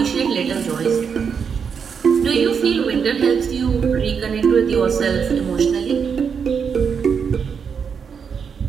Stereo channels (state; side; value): quieter; left; 6.5 dB